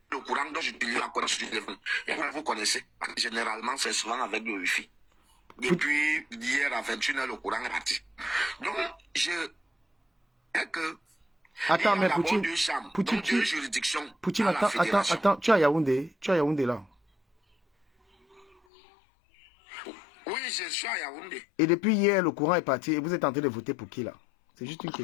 le courant dont j'utilise la connexion du téléphone. Et vous connaissez, généralement, c'est souvent avec le Wi-Fi. Depuis hier à 21h, le courant est parti. Donc, Attends, mais Poutine, deux juridictions. Poutine, à la fédération. attends, tu es à Yaoundé là. Oui, je suis à Yaoundé. Et depuis hier, le courant est parti et vous êtes en train de voter pour qui là? C'est juste une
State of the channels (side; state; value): right; drops out; at 18.6 s